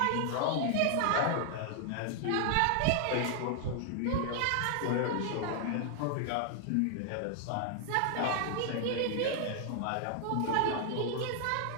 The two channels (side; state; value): both; different; correlation 0.00